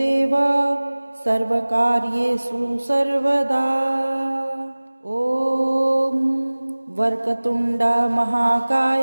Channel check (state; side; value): inverted; both; correlation -1.00